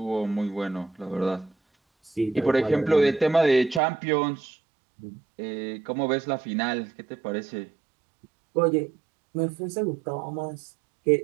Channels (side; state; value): left; drops out; at 3.8 s